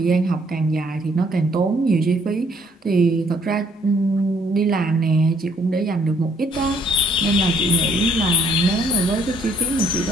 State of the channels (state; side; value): normal; both; correlation 0.65